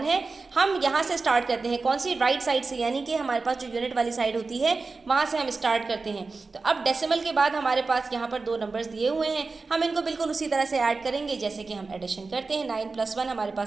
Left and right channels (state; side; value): quieter; left; 4.0 dB